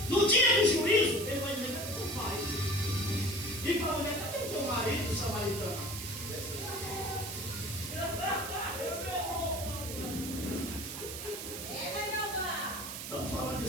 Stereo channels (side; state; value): right; noise; hiss, 7 dB below the sound